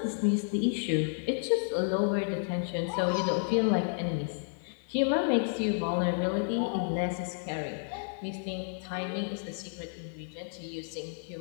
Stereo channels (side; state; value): right; silent; digital silence